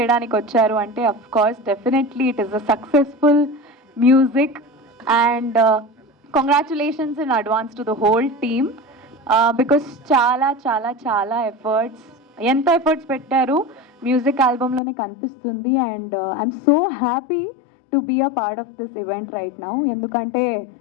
వచ్చారు అంటే of course definitely it is a successful music and congratulations in advance to the whole team because చాలా చాలా చాలా ఎంత ఎఫర్ట్స్ పెట్టారు మ్యూజిక్ ఆల్బమ్లోనే కనిపిస్తుంది. And I'm so happy to be a part of this event right now. ఎందుకంటే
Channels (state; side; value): drops out; right; at 14.8 s